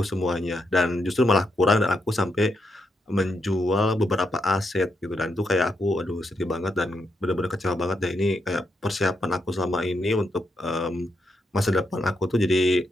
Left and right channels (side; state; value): both; normal; correlation 0.81